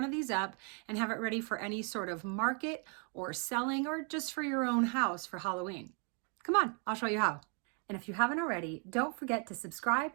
of these up and have it ready for any sort of market or selling or just for your own house for Halloween. Come on, I'll show you how. And if you haven't already, don't forget to subscribe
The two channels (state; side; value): quieter; left; 38.0 dB